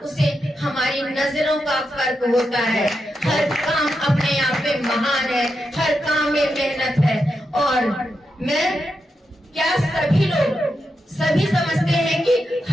उसे हमारी नजरों का फर्क होता है। हर काम अपने आप में महान है, हर काम में मेहनत है। और मैं क्या सभी लोग सभी समझते हैं कि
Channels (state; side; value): normal; both; correlation 0.86